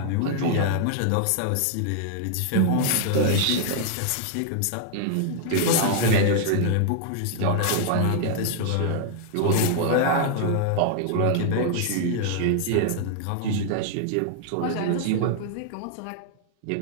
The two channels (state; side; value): different; both; correlation -0.01